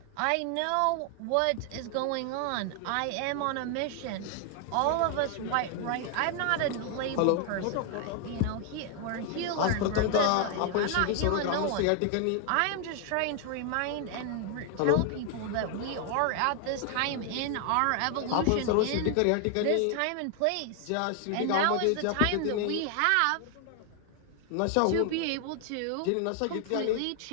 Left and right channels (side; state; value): both; different; correlation 0.00